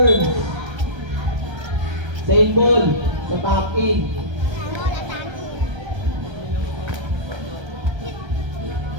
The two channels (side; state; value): left; late; 1.3 ms